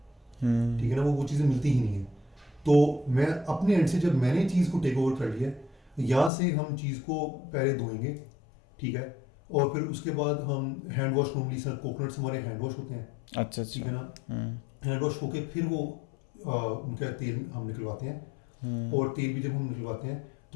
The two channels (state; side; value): drops out; right; at 6.3 s